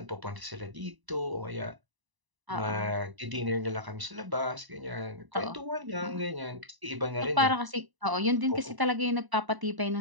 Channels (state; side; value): late; left; 1.0 ms